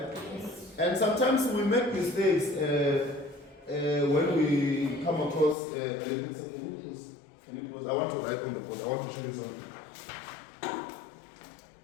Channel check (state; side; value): drops out; right; at 5.6 s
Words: And sometimes we make mistakes when we come across I want to write on the board. I want to show you something.